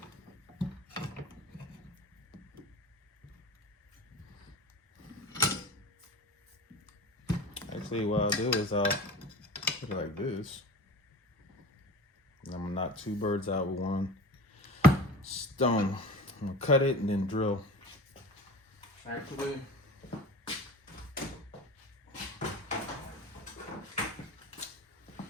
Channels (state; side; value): normal; both; correlation 0.35